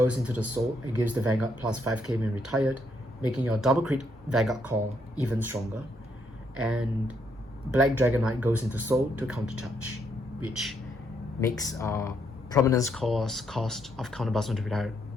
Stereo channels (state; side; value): normal; both; correlation 0.74